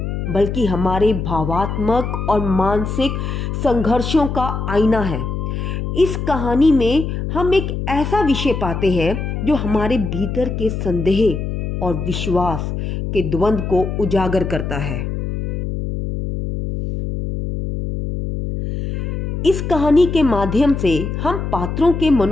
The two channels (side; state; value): left; noise; hum, 3 dB below the sound